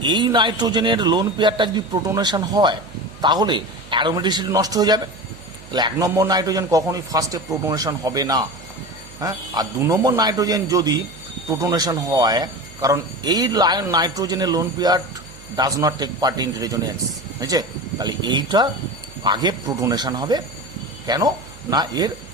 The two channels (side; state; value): right; noise; hum, 20 dB below the sound